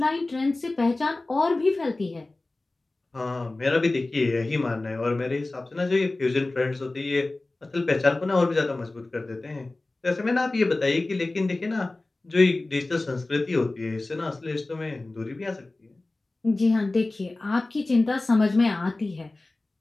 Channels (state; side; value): quieter; right; 3.0 dB